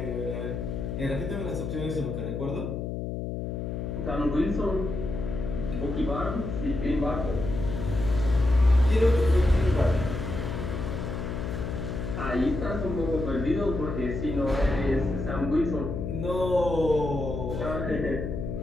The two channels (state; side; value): noise; left; hum, 4 dB below the sound